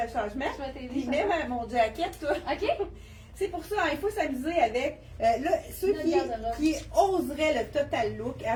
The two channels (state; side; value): identical; both; correlation 1.00